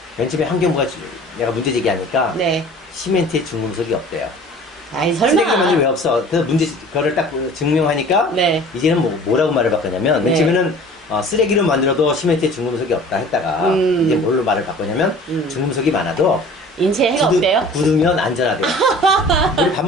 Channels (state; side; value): normal; both; correlation 0.45